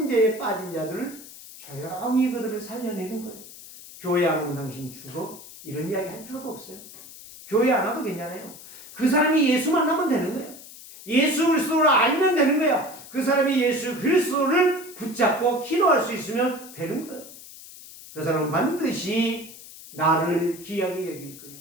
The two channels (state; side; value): noise; left; hiss, 17 dB below the sound